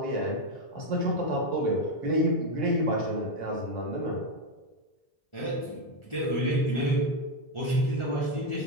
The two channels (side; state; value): right; late; 1.4 ms